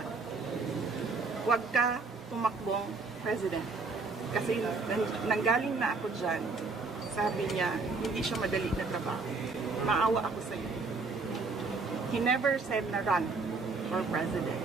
Huwag ka tumakbong President. Kasi nanggaling na ako dyan, sabi niya, hindi siya madali na trabaho. Maawa ako sa iyo. He never said na run for President.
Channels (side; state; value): left; quieter; 4.1 dB